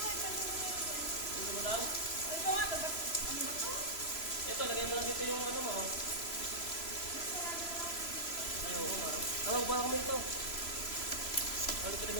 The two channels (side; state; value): right; late; 3.0 ms